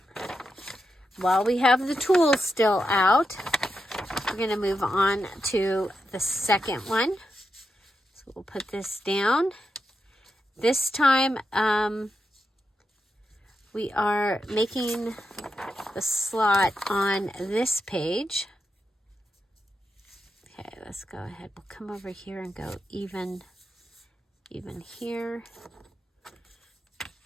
While we have the tools still out, we're going to move on to the second one. So we'll put this down. This time we are making the slot on this page. Okay, let's go ahead. We'll come over here and go even here.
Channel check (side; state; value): both; normal; correlation 0.86